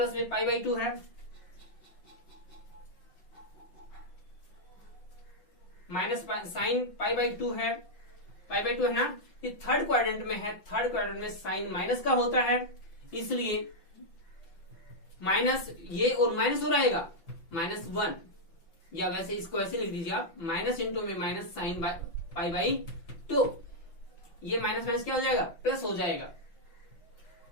में पाई बाई 2 है, माइनस साइन पाई बाई 2 है, पाई बाई 2 है ना। ये थर्ड क्वाड्रेंट में है, थर्ड क्वाड्रेंट में साइन माइनस का होता है, इसलिए माइनस ये और माइनस हो रहेगा -1, या वैसे इसको ऐसे लिख दीजिए आप, माइनस इंटू में माइनस साइन पाई बाई 2, ये माइनस माइनस क्या हो जाएगा, प्लस हो जाएगा।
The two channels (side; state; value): right; late; 5.8 ms